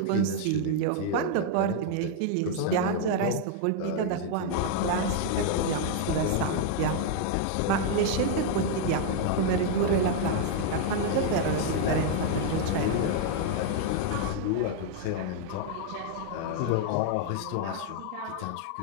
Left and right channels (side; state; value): both; different; correlation 0.00